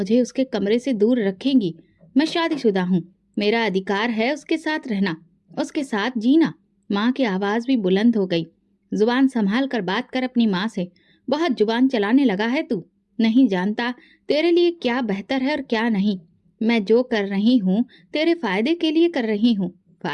उसके कमरे से दूर रखेंगी? मैं शादीशुदा हूँ, मेरा अधिकार है उसके साथ रहना, उसके साथ जीना। माँ की आवाज भी बुलंद हो गई। जुबान संभाल कर बात कर अपनी माँ से। बहुत जुबान चलाने लगा है तू। नहीं जानता तेरे लिए क्या बेहतर है और क्या नहीं। मैं जो कर रही हूँ तेरे फायदे के लिए कर रही हूँ।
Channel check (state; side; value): identical; both; correlation 1.00